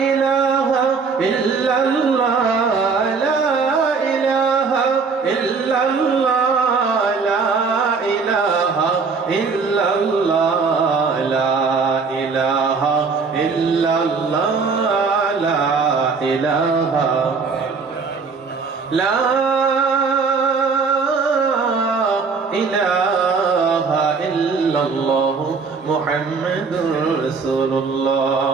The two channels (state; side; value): quieter; left; 4.9 dB